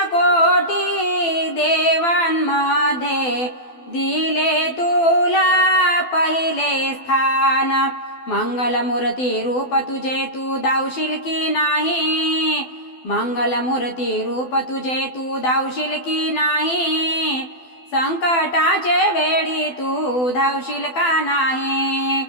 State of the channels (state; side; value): late; right; 12 ms